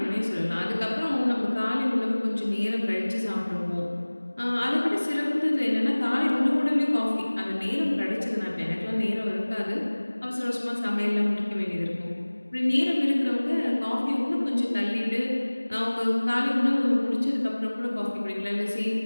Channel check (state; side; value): inverted; both; correlation -1.00